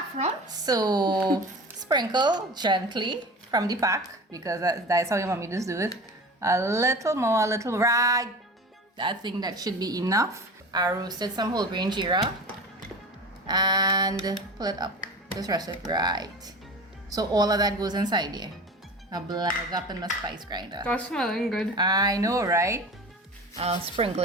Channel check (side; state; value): both; normal; correlation 0.34